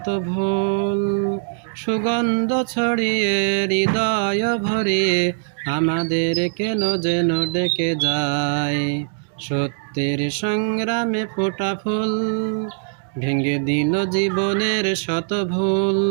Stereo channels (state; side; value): silent; left; digital silence